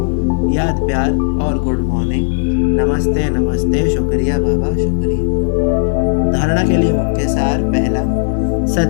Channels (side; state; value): right; silent; digital silence